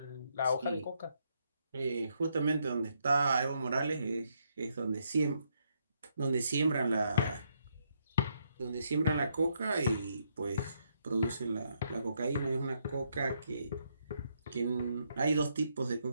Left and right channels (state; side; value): inverted; both; correlation -0.76